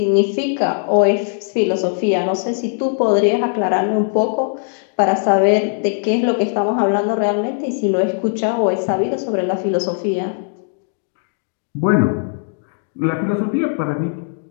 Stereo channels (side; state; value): right; silent; digital silence